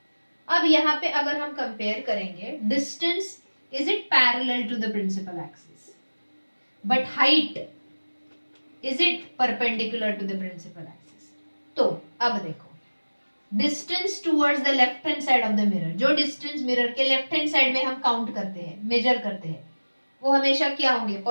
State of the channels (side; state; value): both; inverted; correlation -1.00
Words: अब यहाँ पे अगर हम compare करेंगे, distance is it parallel to the principal axis, but height is it perpendicular to the principal axis. तो अब देखो, distance towards the left hand side of the mirror, जो डिस्टेंस मिरर के लेफ्ट हैंड साइड में हम count करते हैं, major करते हैं, वो हमेशा क्या होंगे,